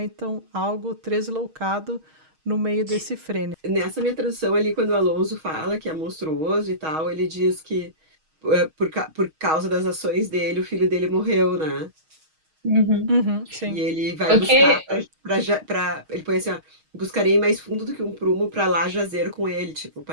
algo tresloucado no meio desse frêne. Nessa minha tradução ali, quando o Alonso fala que é monstruoso e tal, ele diz que por causa das ações dele, o filho dele morreu, né? Uhum. Uhum, E sim. ele vai O buscar que, ele põe assim, ó, buscarei mais fundo do que um prumo pra lá jazer com ele, tipo,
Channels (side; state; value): left; late; 6.4 ms